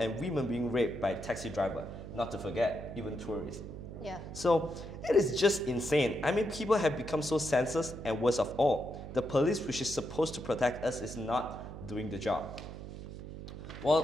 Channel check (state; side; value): noise; right; hum, 10 dB below the sound